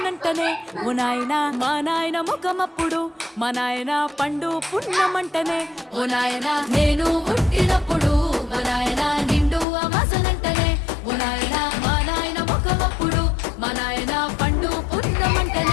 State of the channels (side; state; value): right; drops out; at 9.7 s